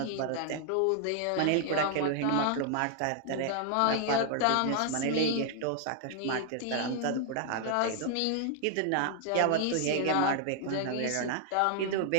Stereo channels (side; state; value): both; different; correlation 0.00